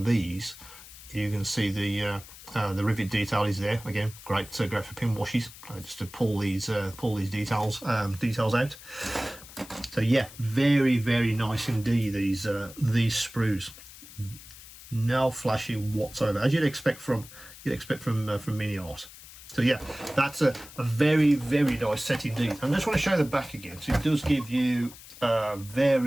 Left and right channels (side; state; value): left; noise; hiss, 18 dB below the sound